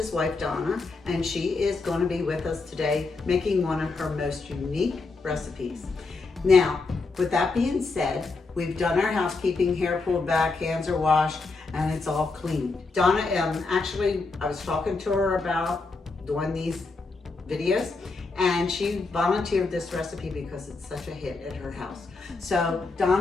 wife Donna, and she is going to be with us today making one of her most unique recipes. Now, with that being said, we've done our housekeeping, hair pulled back, hands are washed, and it's all clean. Donna, actually, I was talking to her about doing these videos, and she volunteered this recipe because it's such a hit at her house. So,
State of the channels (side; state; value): right; quieter; 3.8 dB